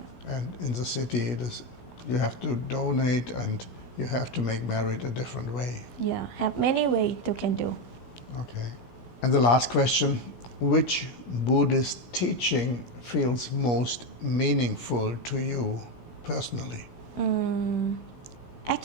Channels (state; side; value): late; right; 16 ms